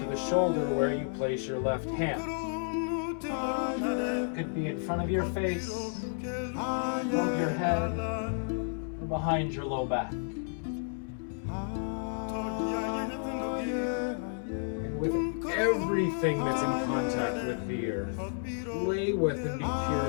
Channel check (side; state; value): right; silent; digital silence